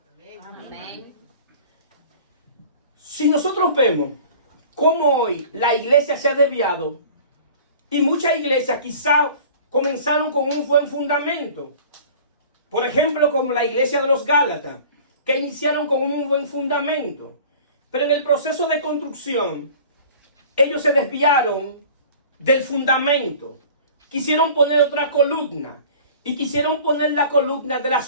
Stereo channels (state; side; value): inverted; both; correlation -0.44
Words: Amén. Si nosotros vemos cómo hoy la iglesia se ha desviado y muchas iglesias quizás comenzaron con un buen fundamento. Por ejemplo, como la iglesia de los Gálatas, que iniciaron con un buen fundamento. Pero en el proceso de construcción, ellos se desviaron del fundamento. Quisieron poner otra columna. Y quisieron poner la columna de